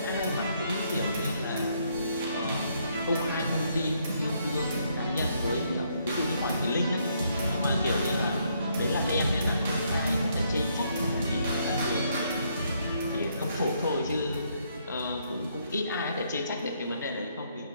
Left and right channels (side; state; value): both; inverted; correlation -0.72